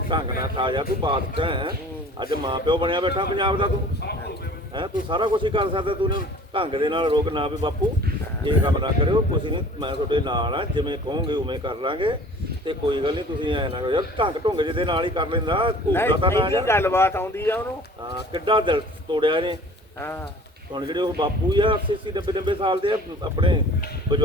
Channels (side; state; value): both; normal; correlation 0.47